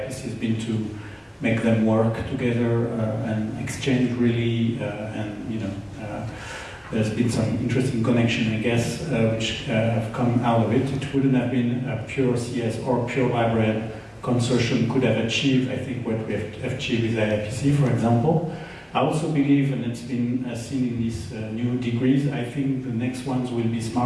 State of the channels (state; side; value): identical; both; correlation 1.00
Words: has been to make them work together and exchange really, there's been some interesting connection, I guess, which have come out of it. It wouldn't have been a pure CS or pure librarian consortium could have achieved, I think, what we have achieved with IIPC, for example. I also believe, and it's been seen in these new degrees, I think the next ones will be